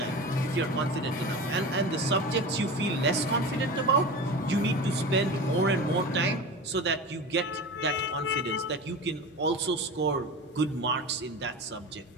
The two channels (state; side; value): normal; both; correlation 0.30